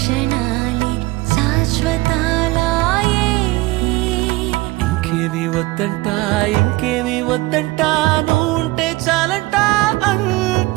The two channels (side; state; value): left; quieter; 20.8 dB